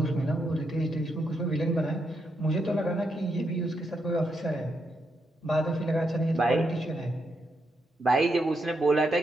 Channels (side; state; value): both; normal; correlation 0.81